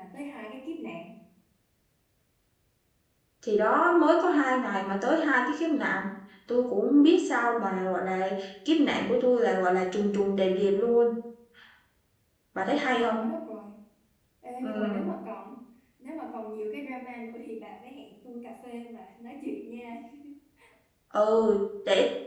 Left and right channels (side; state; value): both; identical; correlation 1.00